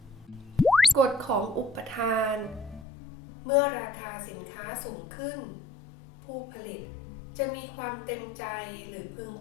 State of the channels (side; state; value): right; drops out; at 2.9 s